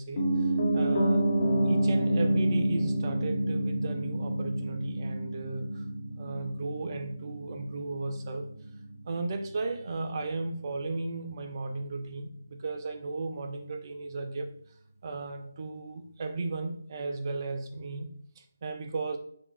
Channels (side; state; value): both; inverted; correlation -0.90